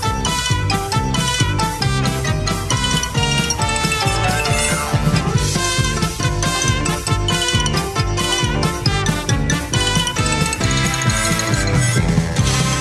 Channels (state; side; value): identical; both; correlation 1.00